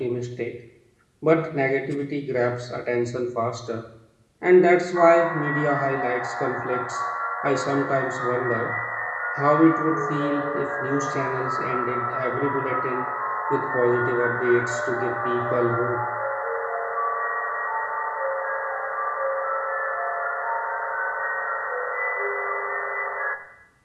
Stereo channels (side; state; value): both; identical; correlation 1.00